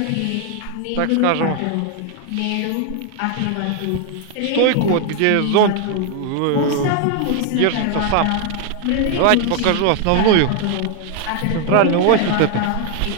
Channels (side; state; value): both; different; correlation 0.00